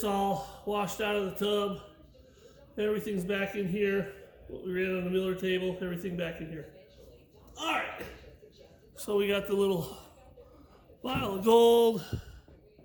all washed out of the tub. Everything's back in here. What we ran on the Miller table, everything back in here. All right. So we got the little vial of gold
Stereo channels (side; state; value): both; identical; correlation 1.00